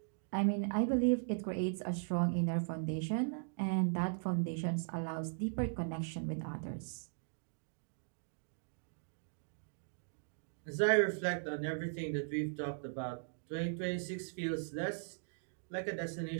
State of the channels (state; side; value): silent; left; digital silence